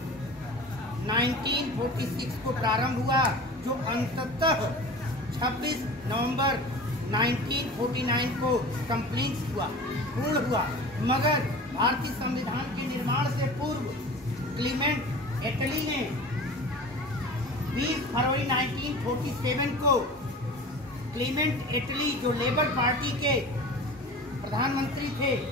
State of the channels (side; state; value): both; normal; correlation 0.37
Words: 1946 को प्रारंभ हुआ, जो अंततः 26 नवंबर 1949 को पूर्ण हुआ। मगर भारतीय संविधान के निर्माण से पूर्व क्लीमेंट एटली ने 20 फरवरी 1947 को क्लीमेंट एटली, जो लेबर पार्टी के प्रधानमंत्री थे,